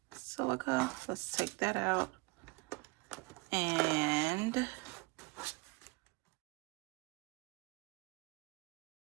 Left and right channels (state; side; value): quieter; left; 25.5 dB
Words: silica. Let's take that out. And